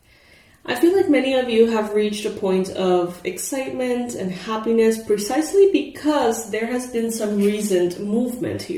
I feel like many of you have reached a point of excitement and happiness precisely because there has been some recent movement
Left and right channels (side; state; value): both; identical; correlation 1.00